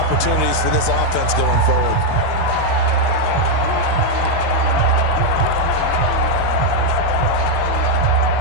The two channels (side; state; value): both; different; correlation 0.01